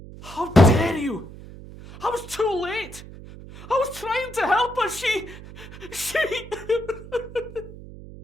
How dare you? I was too late. I was trying to help her. She...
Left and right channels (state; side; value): noise; right; hum, 15 dB below the sound